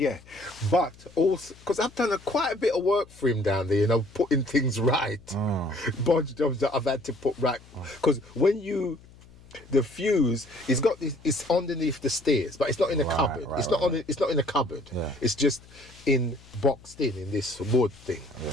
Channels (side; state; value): left; noise; hum, 23 dB below the sound